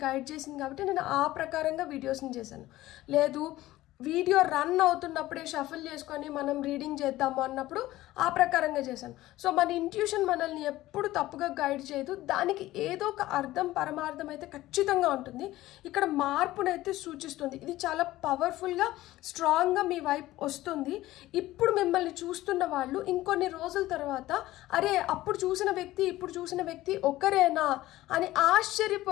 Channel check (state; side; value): quieter; right; 16.3 dB